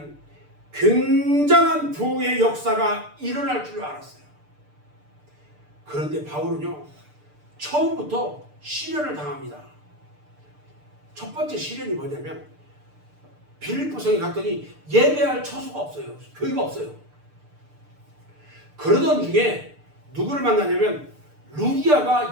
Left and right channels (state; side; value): late; left; 6.7 ms